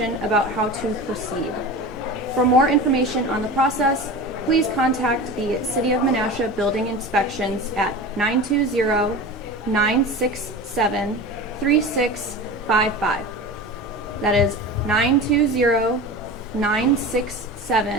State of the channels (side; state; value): both; normal; correlation 0.31